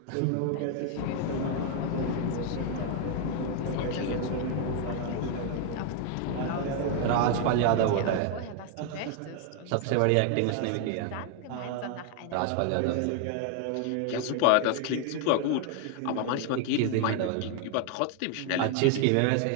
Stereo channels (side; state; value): both; different; correlation 0.00